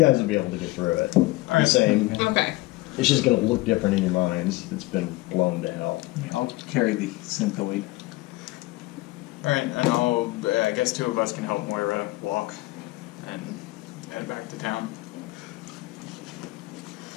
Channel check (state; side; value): quieter; right; 20.5 dB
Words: will be able to get through it. The right. same. Okay. It's just going to look different in your minds. It's been blown to hell. I'll carry the synthoid. All right, and I guess two of us can help Moira walk and head back to town.